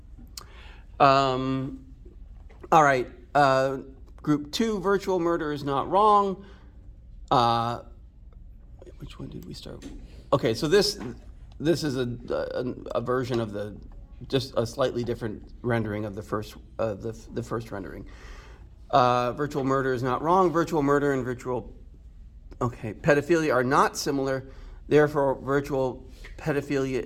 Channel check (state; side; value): identical; both; correlation 1.00